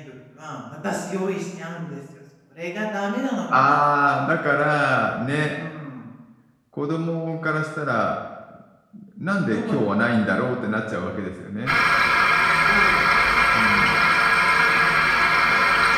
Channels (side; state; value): both; identical; correlation 1.00